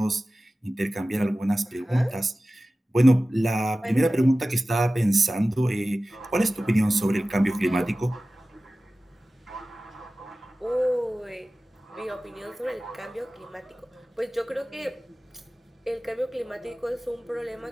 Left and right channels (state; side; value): normal; both; correlation 0.96